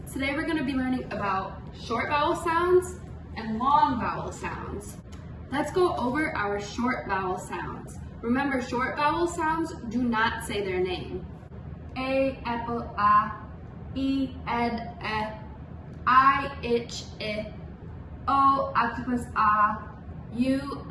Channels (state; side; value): identical; both; correlation 1.00